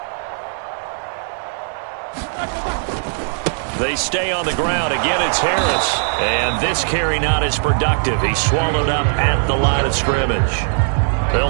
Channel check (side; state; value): left; silent; digital silence